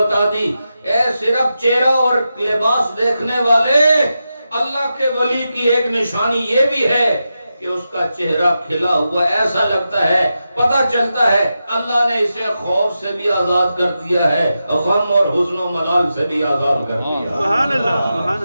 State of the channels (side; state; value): both; inverted; correlation -0.89